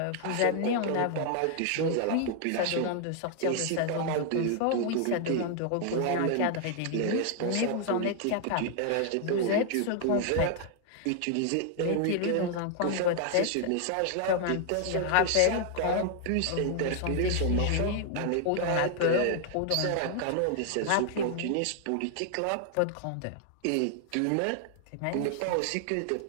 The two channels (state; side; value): different; both; correlation 0.00